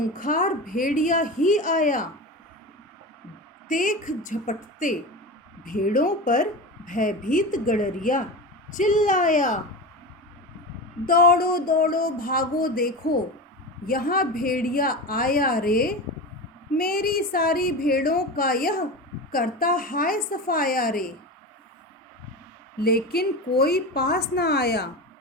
भेड़िया ही आया। देख झपटते भेड़ों पर भयभीत गड़रिया चिल्लाया, दौड़ो दौड़ो भागो देखो यहाँ भेड़िया आया रे। मेरी सारी भेड़ों का यह करता हाय सफाया रे। लेकिन कोई पास न आया,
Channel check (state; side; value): normal; both; correlation 0.25